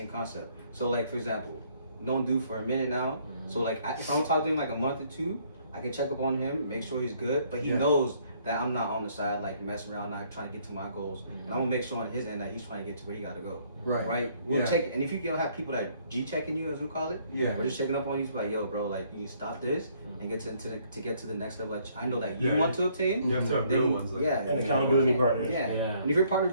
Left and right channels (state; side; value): inverted; both; correlation -0.65